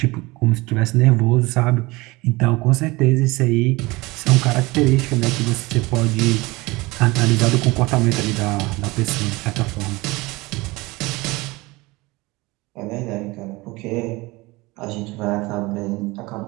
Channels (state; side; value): quieter; left; 22.5 dB